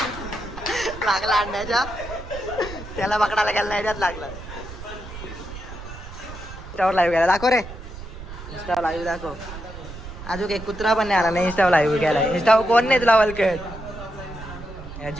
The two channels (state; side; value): noise; right; rumble, 12 dB below the sound